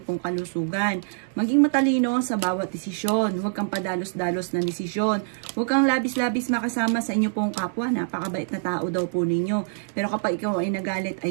kalusugan. Maging matalino sa bawat desisyon. Huwag kang padalos-dalos na desisyon. Huwag kang labis-labis makasama sa inyo pong kapwa. Napakabait na tao daw po ninyo. Pero kapag ikaw ay nagalit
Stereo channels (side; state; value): left; silent; 60 dB below the other